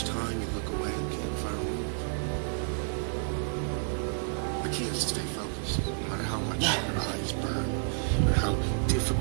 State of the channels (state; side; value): silent; left; digital silence